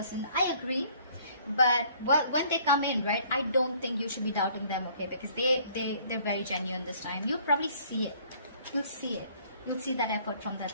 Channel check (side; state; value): both; inverted; correlation -0.58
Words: I agree. But when they come in, right, I don't think you should be doubting them, okay, because they're very genuine this time. You'll probably see it. You'll see it. You'll see that effort from